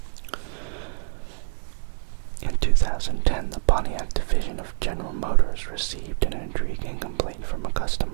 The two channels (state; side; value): silent; left; 61 dB below the other